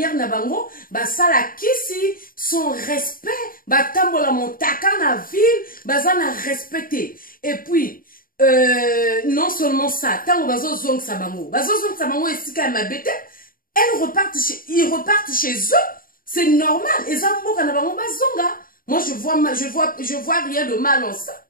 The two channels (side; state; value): right; late; 0.41 ms